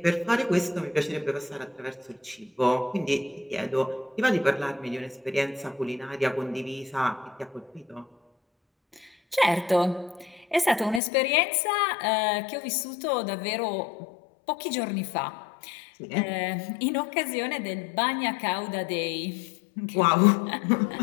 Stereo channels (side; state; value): right; drops out; at 11.0 s